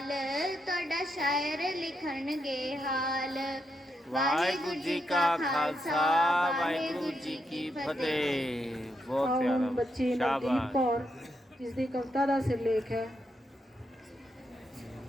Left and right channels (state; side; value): normal; both; correlation 0.81